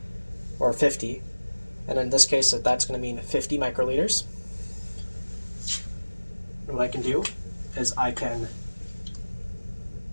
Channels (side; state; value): both; inverted; correlation -1.00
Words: or 50. And in this case, that's going to mean 50 microliters. And what I can do is I can